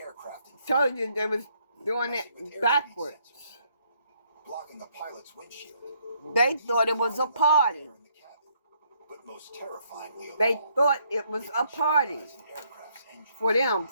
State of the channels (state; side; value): inverted; both; correlation -0.70